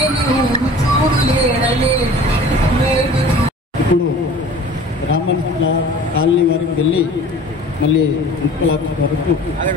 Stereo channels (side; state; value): both; normal; correlation 0.44